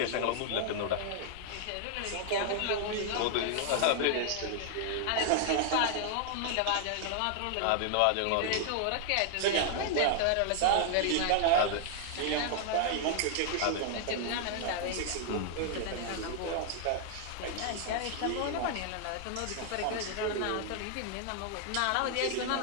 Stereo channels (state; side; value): different; both; correlation 0.00